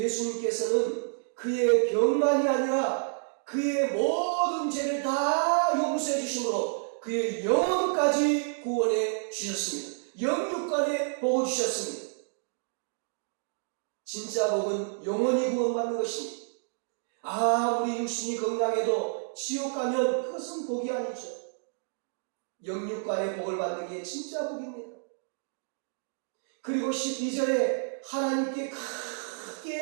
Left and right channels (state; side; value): silent; left; digital silence